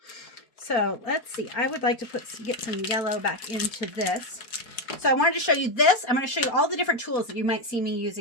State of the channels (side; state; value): right; late; 4.2 ms